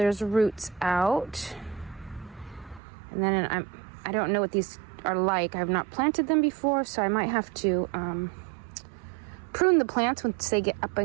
roots out. And then I don't know what these are like. I've not planted them before, so I might have to prune the plants once they get up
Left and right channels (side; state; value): left; drops out; at 2.8 s